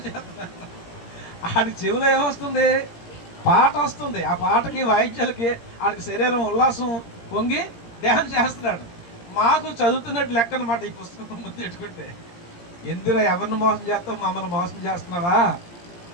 చేస్తున్నాను. ఆడికి చెవిలో ఏమొస్తుంది? పాట వస్తుంది. ఆ పాటకి, వాయిద్యాలకి ఆడికి శరీరం ఉల్లాసం పొంగి డ్యాన్స్ చేస్తున్నాడు. మాకు చదువుతున్నట్టు లెక్క అనమాట. ఈ పుస్తకం ముందు పెట్టుకుంటే, ఎందులో ఎవరిని మోసం చేస్తావు, మమ్మల్ని మోసం చేస్తున్నావా?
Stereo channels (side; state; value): right; late; 17 ms